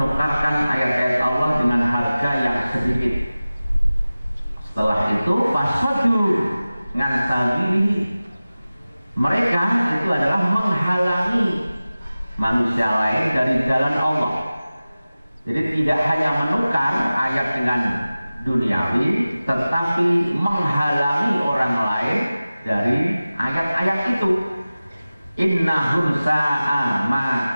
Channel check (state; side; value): inverted; both; correlation -0.97